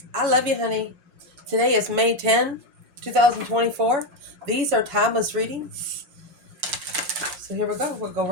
I love you, honey. Today is May 10, 2024. These are timeless readings. So here we go. We'll go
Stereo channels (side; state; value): left; late; 5.6 ms